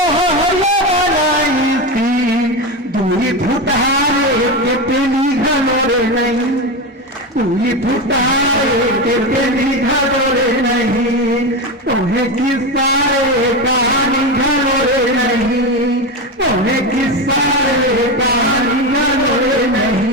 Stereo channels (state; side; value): normal; both; correlation 0.17